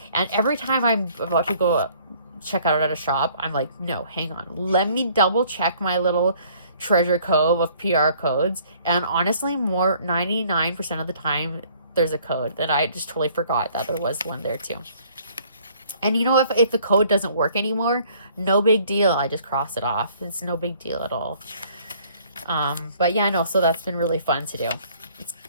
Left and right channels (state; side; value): inverted; both; correlation -0.58